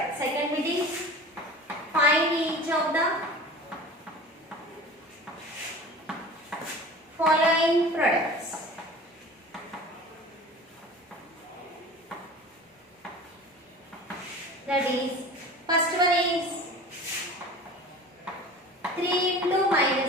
Second bit is find each of the following products. That is, first one is 3 into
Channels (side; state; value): both; normal; correlation 0.39